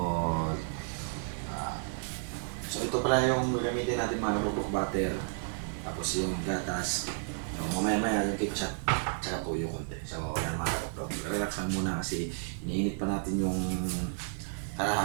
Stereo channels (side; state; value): left; silent; digital silence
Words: so ito pala yung gagamitin natin mga kapupok butter. Tapos yung gatas. So, mamaya yung ketchup at saka tuyo konti. So, yan mga kapupok. Relax lang muna kasi iniinit pa natin yung